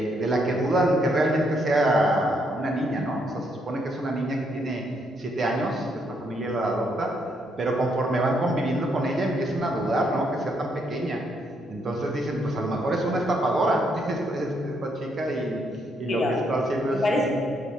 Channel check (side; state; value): both; normal; correlation 0.74